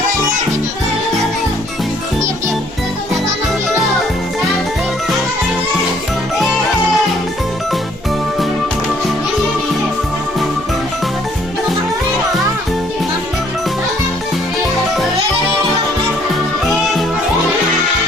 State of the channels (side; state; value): both; normal; correlation 0.63